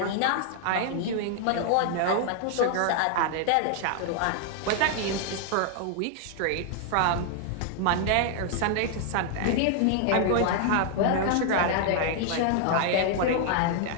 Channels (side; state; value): both; different; correlation 0.00